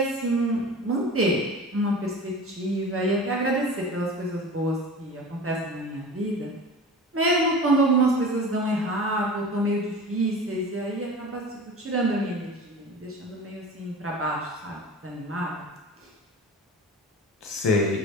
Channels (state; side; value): normal; both; correlation 0.35